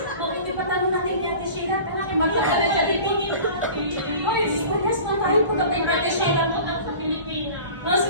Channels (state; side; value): inverted; both; correlation -0.41